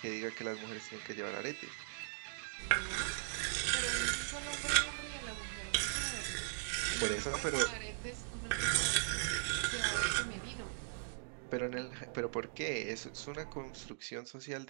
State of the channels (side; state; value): left; silent; digital silence